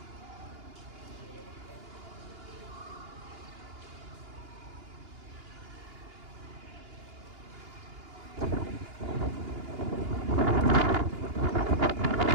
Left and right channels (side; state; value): left; late; 2.9 ms